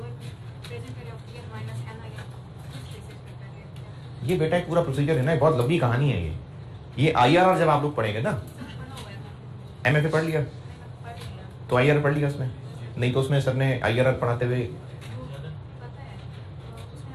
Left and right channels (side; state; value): both; identical; correlation 1.00